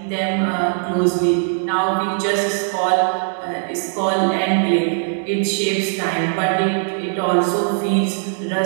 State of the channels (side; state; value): left; silent; digital silence